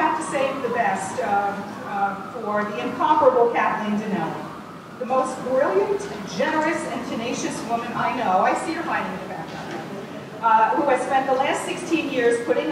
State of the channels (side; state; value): both; identical; correlation 1.00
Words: to save the best for the incomparable Kathleen Dinelli. the most brilliant, generous, and tenacious woman I know. I see her hiding in the background. Who has spent the last 16 years putting